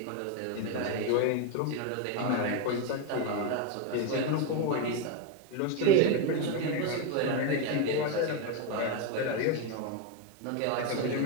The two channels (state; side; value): different; both; correlation 0.02